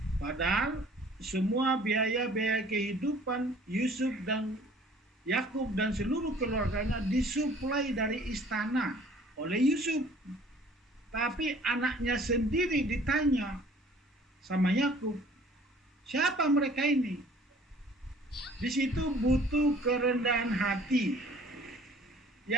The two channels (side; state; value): both; normal; correlation 0.53